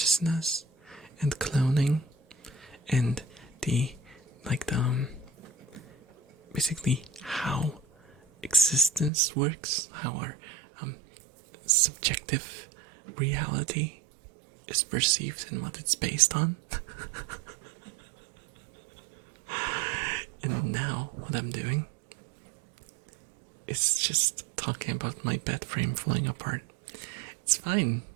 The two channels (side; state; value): left; drops out; at 9.1 s